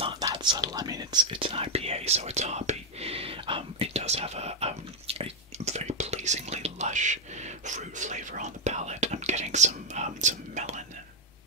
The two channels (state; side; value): normal; both; correlation -0.01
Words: that subtle. I mean, it's an IPA, so it's hoppy. It does have a very pleasingly lush fruit flavor on the palate. I'm getting some melon